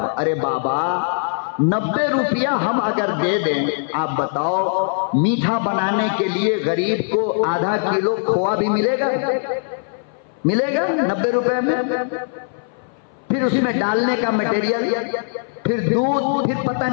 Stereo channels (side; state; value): right; silent; 59 dB below the other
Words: ارے بابا 90 روپیہ ہم اگر دے دیں، آپ بتاؤ میٹھا بنانے کے لیے غریب کو آدھا کلو کھووا بھی ملے گا؟ ملے گا 90 روپے میں؟ پھر اس میں ڈالنے کا مٹیریل، پھر دودھ، پھر پتہ